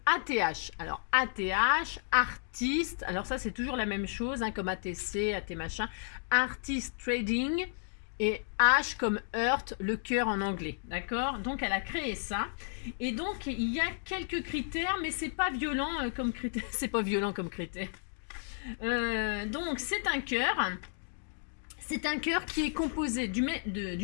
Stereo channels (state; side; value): silent; right; digital silence